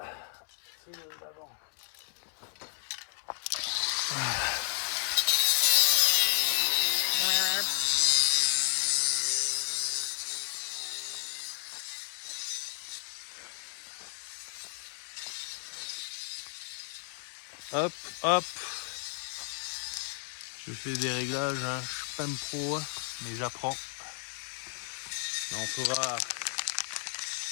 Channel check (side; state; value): right; silent; 56 dB below the other